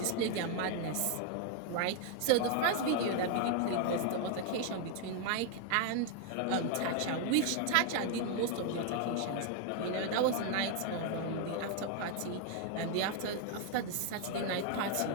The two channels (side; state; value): both; different; correlation 0.00